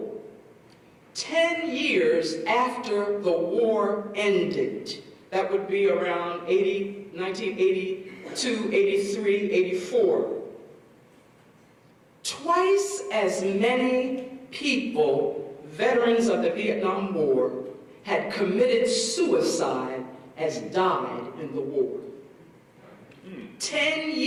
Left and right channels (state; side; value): identical; both; correlation 1.00